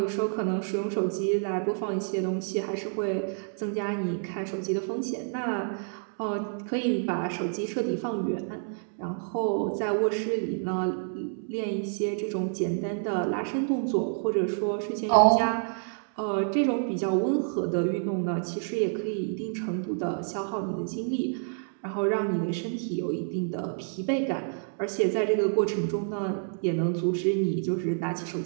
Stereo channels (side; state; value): left; silent; 59 dB below the other